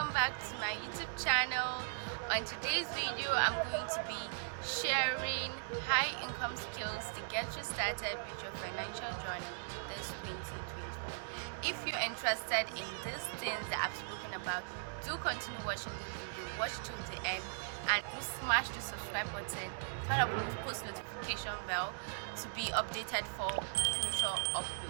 back to my YouTube channel. On today's video I'm going to be sharing high income skills to get you started with your financial journey this 2024. If you're interested in these things that I've spoken about, do continue watching this video, watch till the end, and do smash the subscribe button, turn up the post notification bell to be updated for future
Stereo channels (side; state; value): left; silent; digital silence